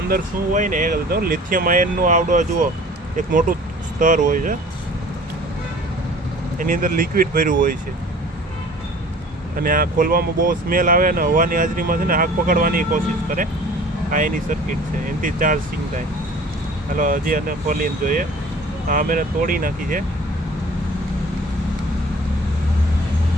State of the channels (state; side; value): normal; both; correlation 0.47